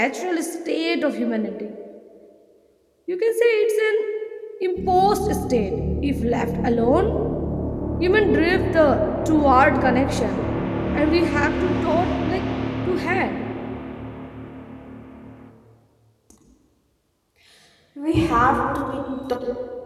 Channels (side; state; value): both; identical; correlation 1.00